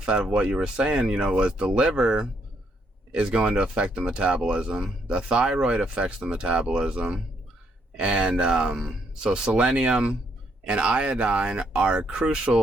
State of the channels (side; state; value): both; normal; correlation 0.73